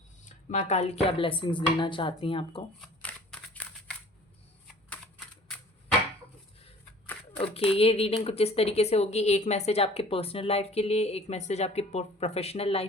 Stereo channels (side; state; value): both; normal; correlation 0.49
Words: माँ काली क्या ब्लेसिंग्स देना चाहती हैं आपको। ओके, ये रीडिंग कुछ इस तरीके से होगी। एक मैसेज आपके पर्सनल लाइफ के लिए, एक मैसेज आपके प्रोफेशनल